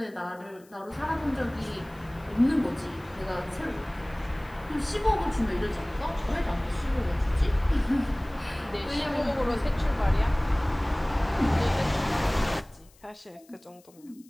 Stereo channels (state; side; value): noise; left; hiss, 29 dB below the sound